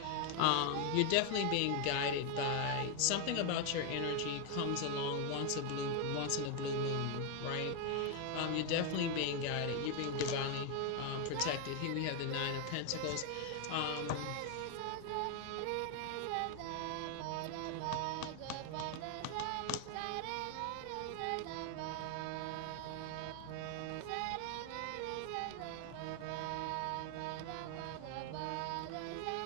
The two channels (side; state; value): both; different; correlation 0.01